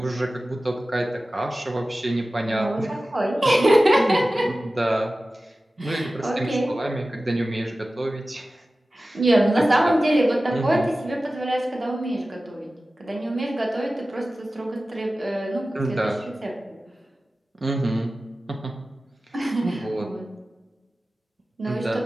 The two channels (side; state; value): both; normal; correlation 0.96